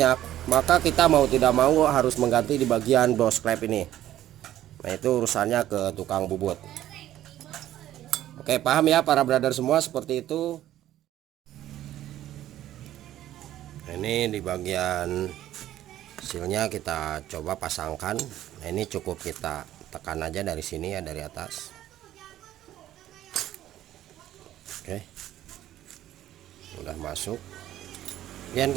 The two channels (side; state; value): left; quieter; 13.0 dB